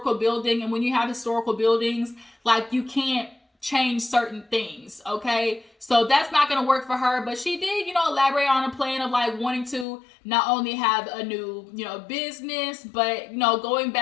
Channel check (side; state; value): right; drops out; at 9.9 s